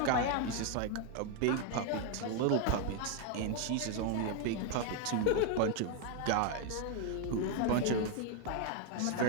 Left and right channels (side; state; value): both; different; correlation 0.01